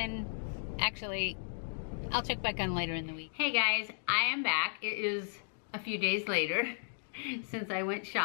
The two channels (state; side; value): silent; right; digital silence